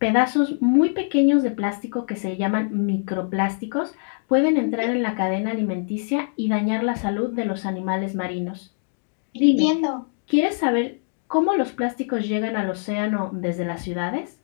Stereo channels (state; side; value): silent; right; digital silence